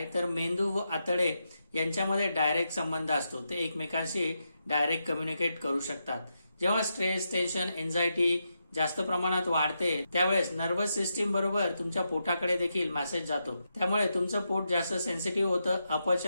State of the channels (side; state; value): both; inverted; correlation -0.85